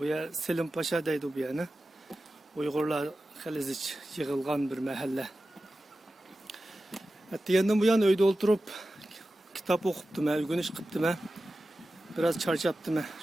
yer Selim Paşa deydi bu yerni. Uyg'urlar xilizich yig'ilgan bir mahalla. Diyendim bu yan öyde oturup kitap okuptum, ögünüş kıptım. Biraz çarşaptım.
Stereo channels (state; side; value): normal; both; correlation 0.94